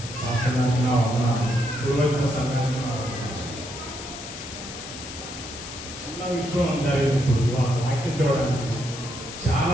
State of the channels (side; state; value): left; noise; hiss, 11 dB below the sound